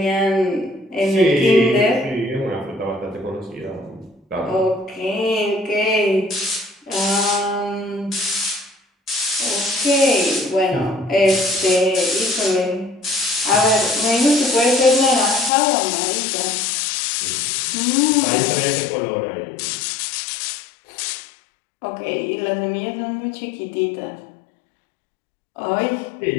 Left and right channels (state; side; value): drops out; right; at 15.5 s